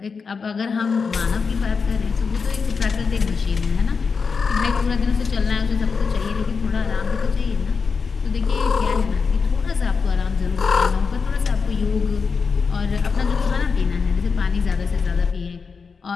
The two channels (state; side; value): quieter; right; 5.2 dB